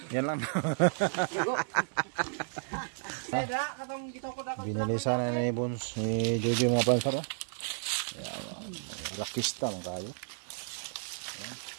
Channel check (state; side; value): silent; left; 56 dB below the other